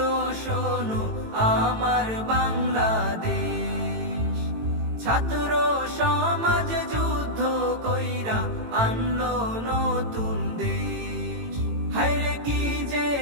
শোনো আমার বাংলাদেশ, ছাত্র সমাজ যুদ্ধ কইরা আনলো নতুন দেশ। হায়রে কি যে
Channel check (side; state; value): left; late; 18 ms